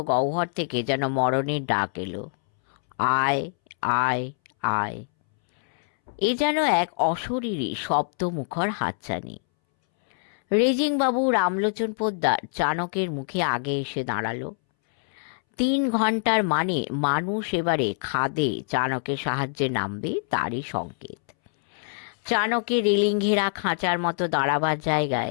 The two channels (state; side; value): silent; right; 62 dB below the other